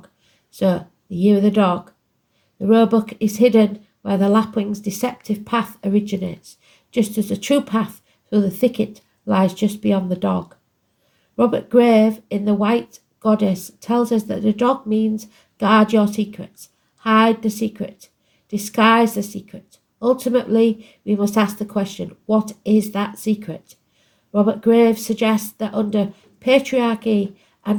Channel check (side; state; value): both; identical; correlation 1.00